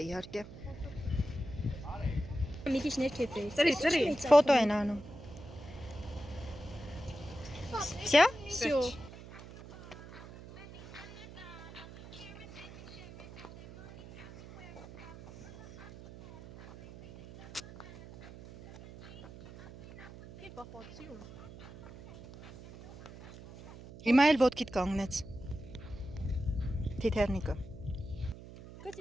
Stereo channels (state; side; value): noise; right; hum, 16 dB below the sound